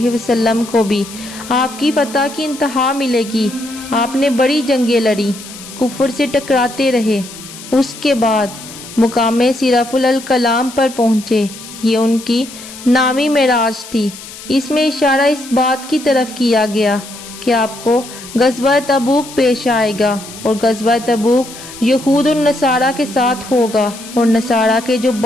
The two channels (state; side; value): noise; left; hiss, 15 dB below the sound